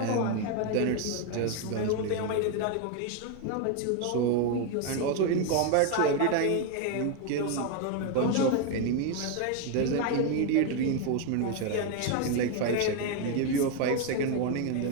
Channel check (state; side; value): different; both; correlation 0.01